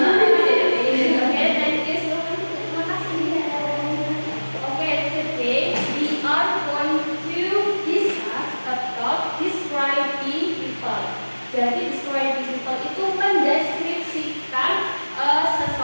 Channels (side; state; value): both; inverted; correlation -1.00